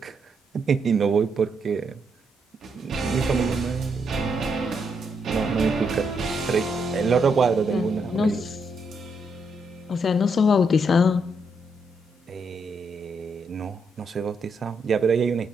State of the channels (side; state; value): both; normal; correlation 0.78